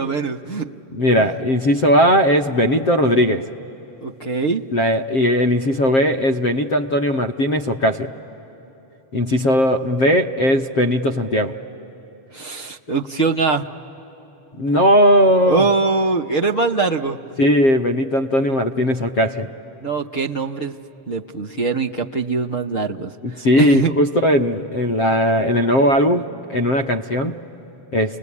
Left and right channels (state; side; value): late; right; 7.5 ms